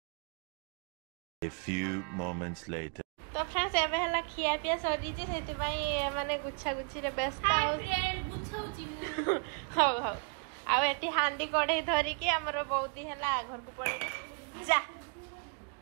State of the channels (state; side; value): quieter; left; 39.9 dB